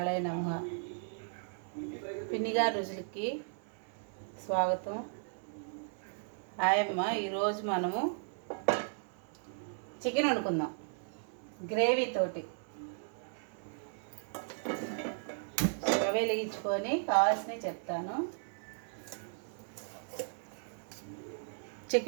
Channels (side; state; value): left; silent; 54 dB below the other